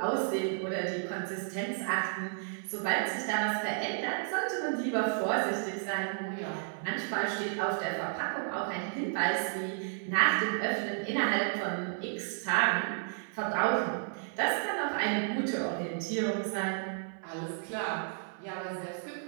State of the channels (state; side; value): silent; left; 56 dB below the other